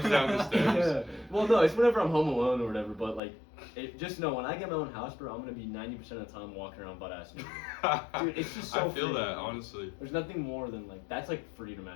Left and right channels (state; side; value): drops out; right; at 3.2 s